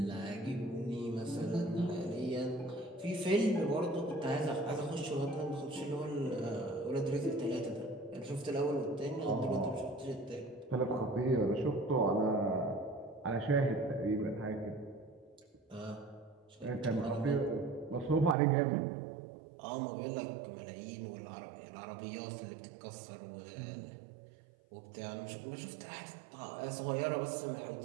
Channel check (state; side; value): drops out; left; at 18.4 s